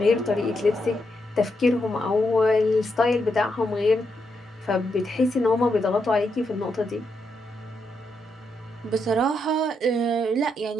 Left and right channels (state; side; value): normal; both; correlation 0.81